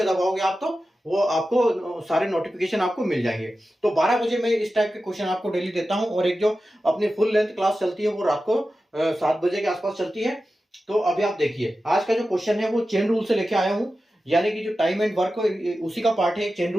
दबाओगे आप तो वो आपको सारे नोटिफिकेशन आपको मिल जाएंगे। तो 12 बजे मैं इस टाइप के क्वेश्चन आपको डेली देता हूं, और एक जो अपनी फुल लेंथ क्लास चलती है वो रात को 7 बजे के आसपास चलती है। तो अभी आप देखिए, आज का जो क्वेश्चन है वो चेन रूल से लेके आया हूं, यानी कि जो टाइम एंड वर्क उसी का पार्ट है चेन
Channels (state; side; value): normal; both; correlation 0.93